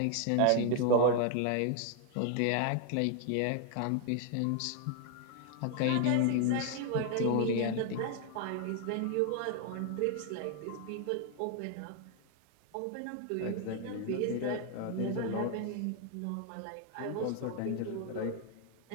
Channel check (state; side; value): different; both; correlation 0.00